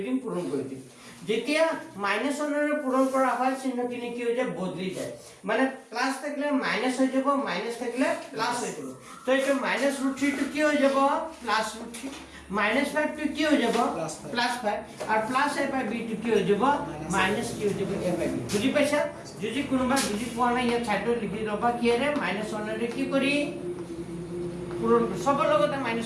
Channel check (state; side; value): identical; both; correlation 1.00